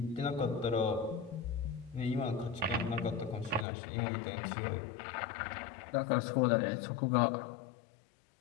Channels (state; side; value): drops out; right; at 3.7 s